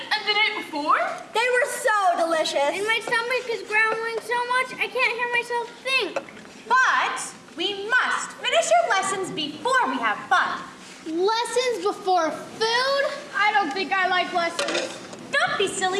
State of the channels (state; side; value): identical; both; correlation 1.00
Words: and the night before? They were so delicious. And my stomach is growling so much I can't hear myself think. But we must finish our lessons before we have fun. Lessons before food? I don't think I like lessons. Don't be